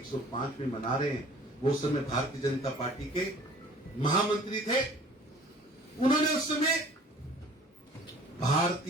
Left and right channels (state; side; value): normal; both; correlation 0.50